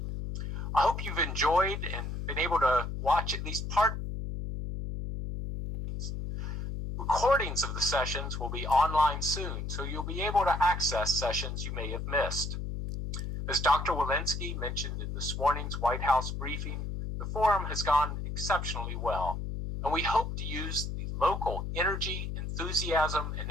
I hope you've enjoyed and been able to watch at least part. Recordings of the sessions will be online soon, so you'll be able to access sessions you may have missed. As Dr. Walensky mentioned in this morning's White House briefing, the forum has gone exceptionally well, and we hope to use the local energy, enthusiasm, and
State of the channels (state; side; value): noise; left; hum, 4 dB below the sound